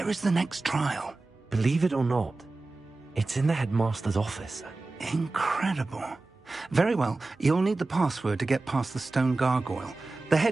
is the next trial? Believe it or not, it's in the headmaster's office. Incredible. Very well, you'll need the password to get past the stone gargoyle. The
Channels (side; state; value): left; quieter; 3.3 dB